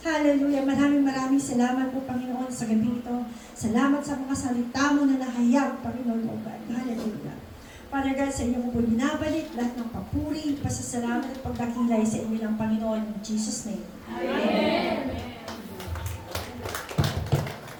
Hallelujah. Maraming salamat po, Panginoon, sa gabi ito. Salamat sa mga salita mo na nahayag, Panginoon, O God. Hallelujah. Father God, sa inyo po binabalik lahat ng papuri, pasasalamat at pagdakilay sa inyo ng Panginoon. In Jesus' name. Amen.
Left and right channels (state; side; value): identical; both; correlation 1.00